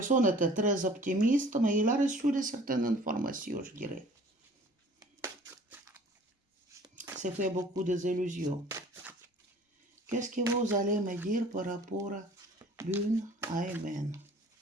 était très optimiste, mais il a reçu de certaines informations, je dirais. C'est fait beaucoup de illusions. Qu'est-ce que vous allez me dire par rapport à Lune Amen?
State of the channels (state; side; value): normal; both; correlation 0.50